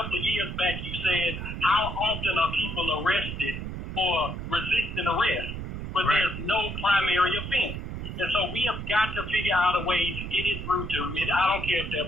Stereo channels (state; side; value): noise; right; rumble, 6 dB below the sound